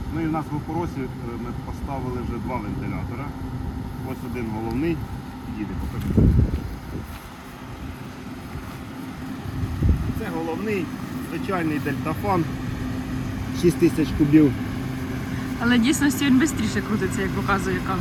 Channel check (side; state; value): both; identical; correlation 1.00